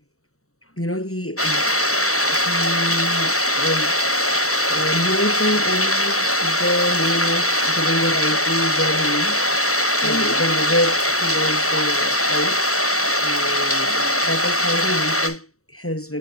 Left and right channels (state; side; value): late; right; 0.64 ms